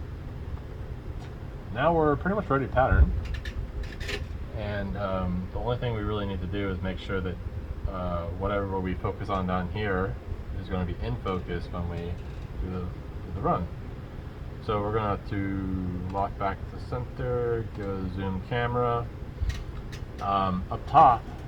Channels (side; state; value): both; identical; correlation 1.00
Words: now we're pretty much ready to pattern. And the only thing we really need to do is make sure that whatever we focus on down here is going to be in focus when we do the run. So we're going to lock back to center, go to zoom camera. Up top